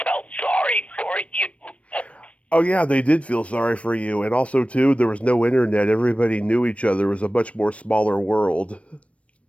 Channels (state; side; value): late; right; 0.063 ms